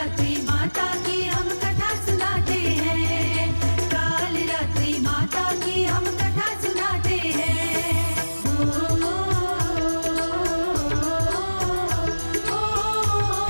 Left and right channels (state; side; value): inverted; both; correlation -1.00